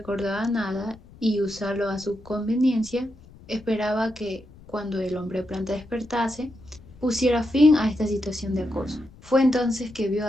nada y usarlo a su conveniencia, esperaba que cuando el hombre planta despertase, pusiera fin a esta situación de acoso. Fue entonces que vio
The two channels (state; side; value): noise; left; rumble, 22 dB below the sound